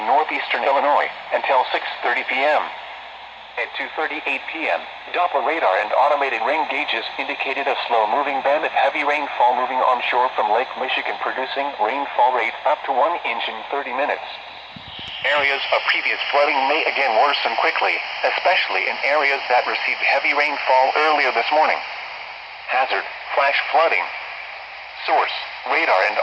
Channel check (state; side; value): identical; both; correlation 1.00